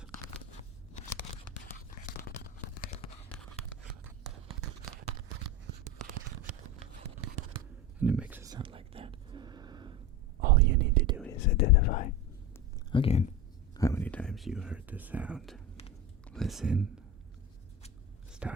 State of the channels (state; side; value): normal; both; correlation 0.24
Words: And it makes a sound like that. All you need to do is identify, again, how many times you heard the sound. Listen.